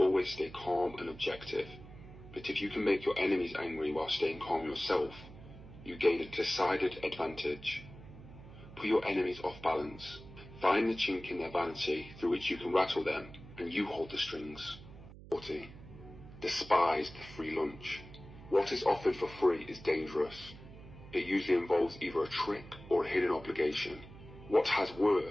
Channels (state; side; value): noise; right; hum, 17 dB below the sound